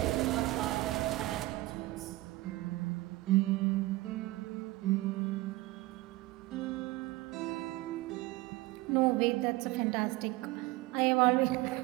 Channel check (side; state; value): left; quieter; 19.5 dB